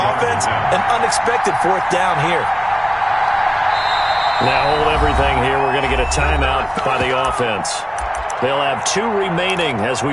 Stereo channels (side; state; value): both; identical; correlation 1.00